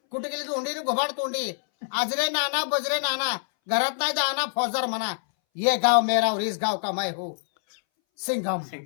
कुठे गेली तोंडी घोबाड तोंडी, आजरे नाना बजरे नाना, घरात नाही दाना फौजदार म्हणा. ये गाव मेरा और इस गाव का मैं हूँ सिंघम.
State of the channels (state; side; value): silent; right; 61 dB below the other